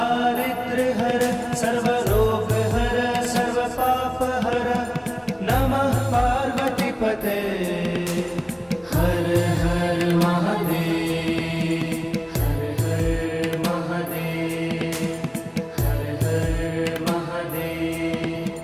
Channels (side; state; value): both; identical; correlation 1.00